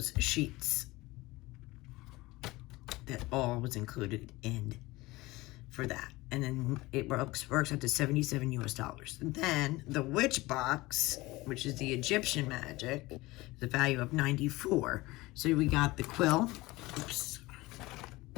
sheets. That all was included in for that. And then it works out to $77 US. And then the witch box, which is the Egyptian magic, the value of 94. So we got the quill. Oops.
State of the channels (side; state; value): right; quieter; 20.6 dB